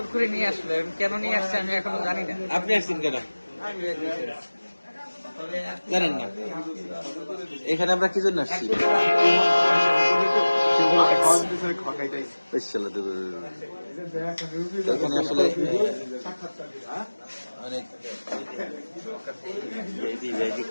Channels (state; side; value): inverted; both; correlation -1.00